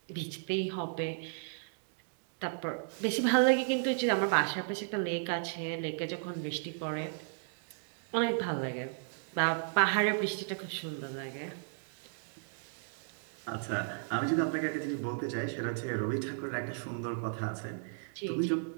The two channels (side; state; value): left; silent; digital silence